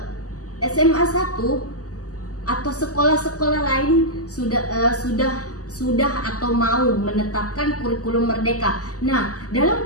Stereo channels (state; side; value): late; right; 0.67 ms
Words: SMA 1 atau sekolah-sekolah lain sudah atau mau menetapkan kurikulum merdeka. Nah,